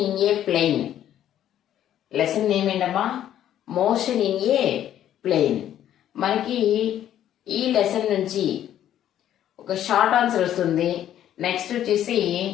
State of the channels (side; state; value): right; quieter; 11.2 dB